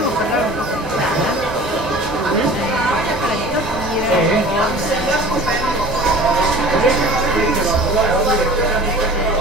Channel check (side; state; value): right; noise; rumble, 14 dB below the sound